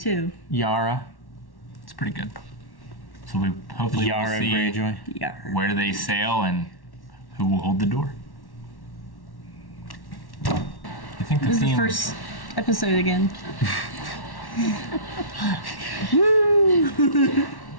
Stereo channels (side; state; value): right; late; 1.1 ms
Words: Yara. it's pretty good. So we hopefully will Yara see Greyjoy. Yeah. where they sail and who will hold the door. I think the This is the theme. first episode again. Woo!